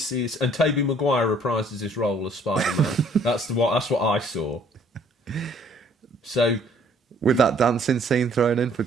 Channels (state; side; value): normal; both; correlation 0.60